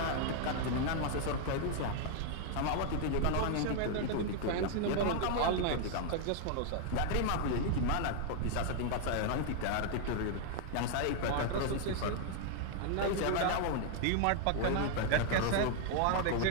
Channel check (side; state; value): both; different; correlation 0.00